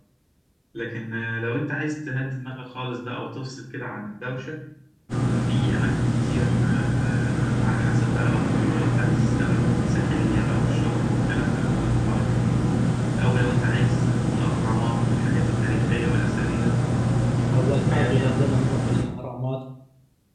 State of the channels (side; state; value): both; identical; correlation 1.00